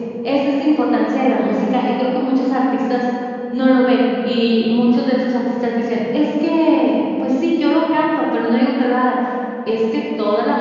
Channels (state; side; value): identical; both; correlation 1.00